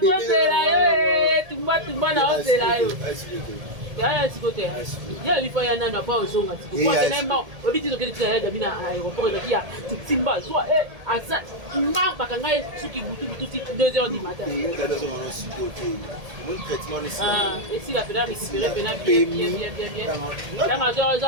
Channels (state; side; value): late; left; 1.8 ms